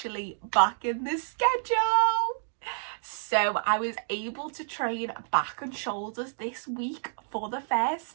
back in the schedule. So I was able to train back and shoulders this week for the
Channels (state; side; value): silent; left; digital silence